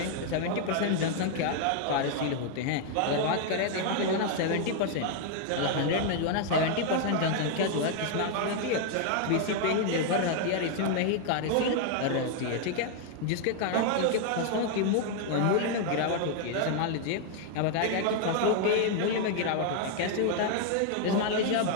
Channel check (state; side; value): different; both; correlation 0.00